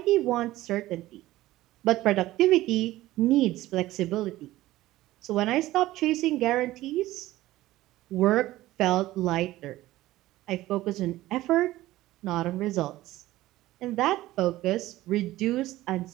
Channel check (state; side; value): quieter; left; 16.4 dB